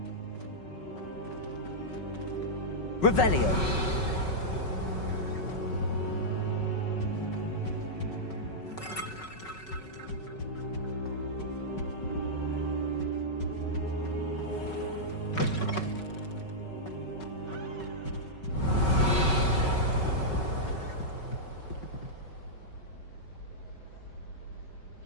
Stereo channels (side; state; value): right; late; 5.3 ms